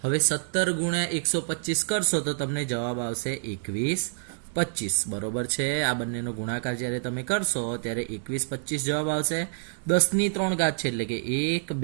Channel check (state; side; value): silent; left; digital silence